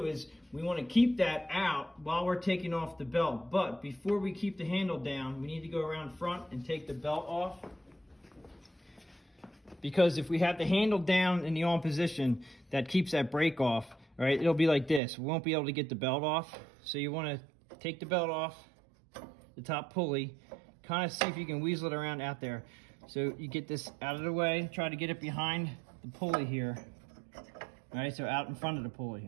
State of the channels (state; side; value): drops out; left; at 15.0 s